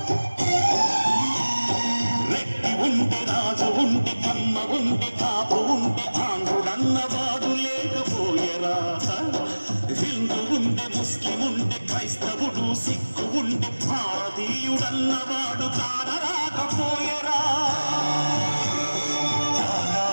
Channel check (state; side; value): inverted; both; correlation -1.00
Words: రెడ్డి ఉంటే రాజు ఉంటే కమ్మ ఉంటే కాపు ఉంటే ఆంధ్రుడన్నవాడు లేకపోయరా. హిందూ ఉంటే ముస్లిం ఉంటే క్రైస్తవుడు సిక్కు ఉంటే భారతీయుడన్నవాడు కానరాకపోయరా.